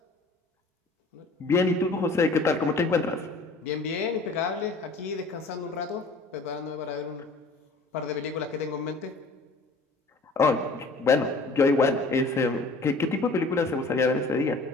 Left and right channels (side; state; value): right; quieter; 3.4 dB